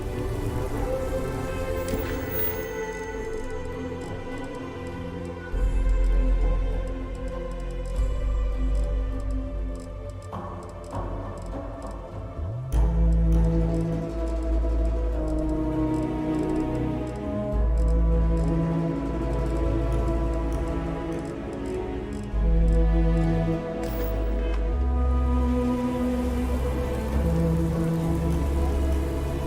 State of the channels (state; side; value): identical; both; correlation 1.00